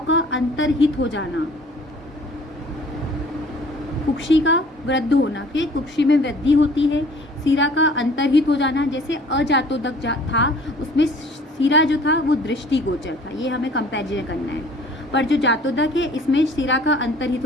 का अंतर्हित हो जाना, कुक्षी का वृद्ध होना, फिर कुक्षी में वृद्धि होती है, सिरा का अंतर्हित हो जाना। जैसे अजातोदक था उसमें सिरा जो था वो दृष्टिगोचर था, ये हमें कंपैरिजन करना है। पर जो जातोदक है इसमें सिरा का अंतर्हित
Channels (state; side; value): normal; both; correlation 0.52